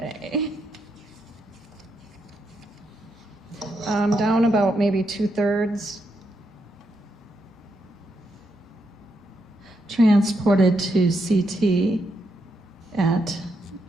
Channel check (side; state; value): both; normal; correlation 0.81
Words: Down about maybe 2/3. transported to CT at,